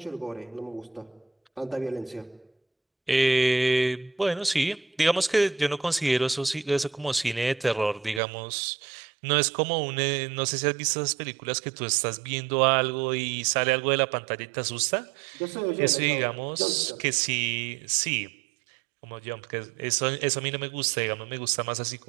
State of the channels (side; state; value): left; drops out; at 8.2 s